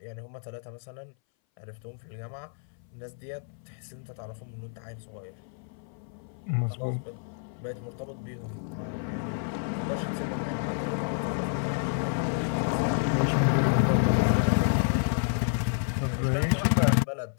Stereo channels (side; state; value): right; silent; 58 dB below the other